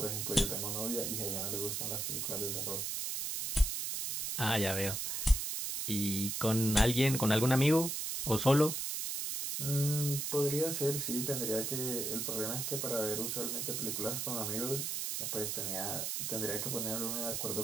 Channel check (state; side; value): noise; right; hiss, 2 dB below the sound